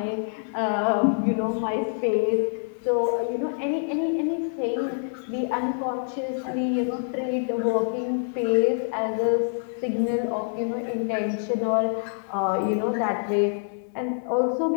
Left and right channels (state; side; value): silent; right; 61 dB below the other